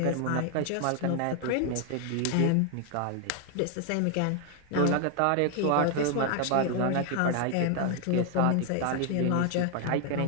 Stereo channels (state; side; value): different; both; correlation 0.00